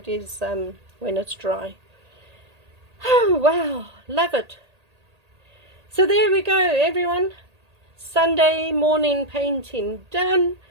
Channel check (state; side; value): late; left; 1.8 ms